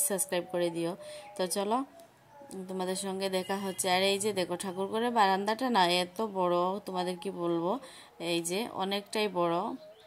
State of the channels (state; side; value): identical; both; correlation 1.00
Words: সাবস্ক্রাইব করে দিও। তো চলো, তোমাদের সঙ্গে দেখা হচ্ছে। আর এই যে দেখো, ঠাকুরঘরের বারান্দাটা না এত বড়, তোমাদের কি বলবো, এই যে অনেকটাই বড়।